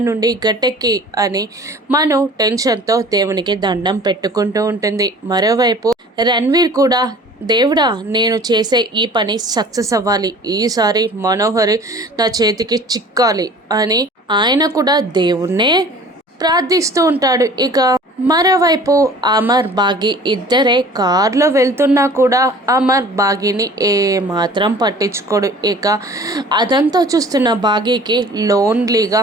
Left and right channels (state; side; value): normal; both; correlation 0.46